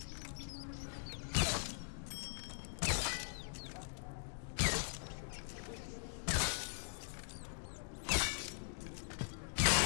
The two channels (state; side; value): silent; right; digital silence